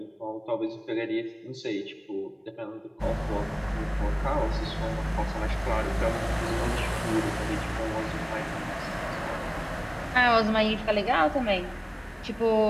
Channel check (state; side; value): identical; both; correlation 1.00